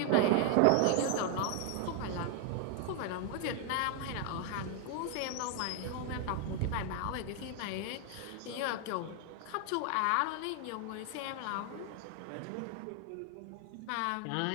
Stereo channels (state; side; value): different; both; correlation 0.01